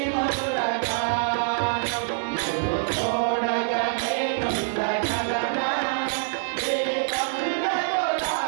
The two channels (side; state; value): left; silent; 62 dB below the other